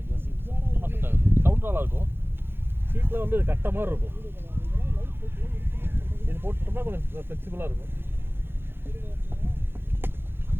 சீட் செட் ஆகுது. சவுண்ட் நல்லா இருக்கும். சீட்டில் வந்து கட்ட மாதிரி இருக்கும். இது போட்டுட்டோம்னா கொஞ்சம் ஃப்ளெக்சிபிளாக இருக்கும்.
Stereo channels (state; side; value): late; left; 0.11 ms